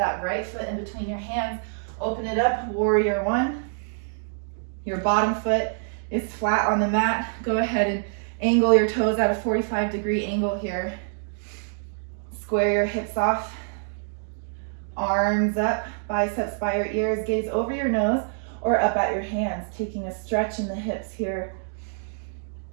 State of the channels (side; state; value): left; silent; digital silence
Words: right foot in between your hands. Open it up, warrior one. Your bottom foot is flat on the mat. Go ahead and angle your toes at a 45-degree angle here. Square your hips off. Arms up, biceps by your ears, gaze over your nose or up at your hands, taking a stretch in the hips here.